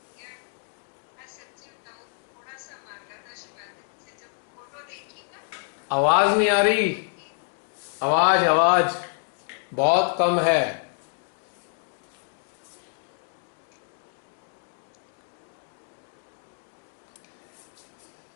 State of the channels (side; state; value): right; silent; 59 dB below the other